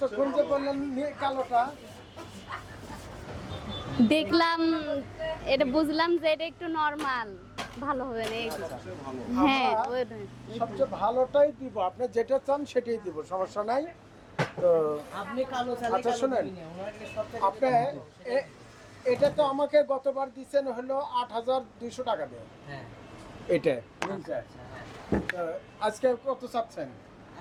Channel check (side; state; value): both; identical; correlation 1.00